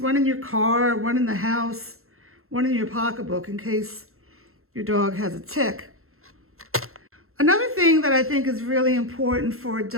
in your car, one in the house, one in your pocketbook in case your dog has a tick. Another thing that I think is really important for a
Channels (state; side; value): late; left; 0.62 ms